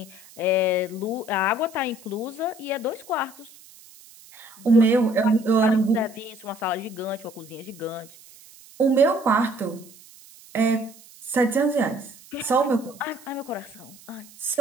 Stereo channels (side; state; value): right; noise; hiss, 22 dB below the sound